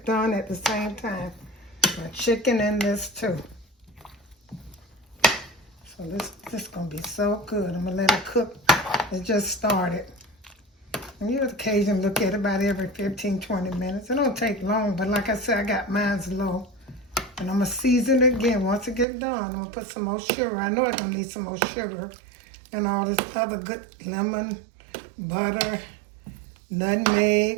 done at the same time. My chicken and this too. So this is going to be so good. I'm going to let it cook. It just started. And you occasionally look at it about every 15, 20 minutes. It don't take long, but like I said, I got mine's low. And I'm going to season it again. Once it gets done, I'm going to put some more sugar. I know I'm going to need some more sugar. And all this other good lemon, butter,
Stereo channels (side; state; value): left; drops out; at 19.1 s